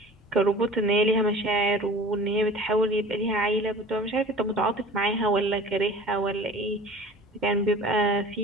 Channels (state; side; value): normal; both; correlation 0.42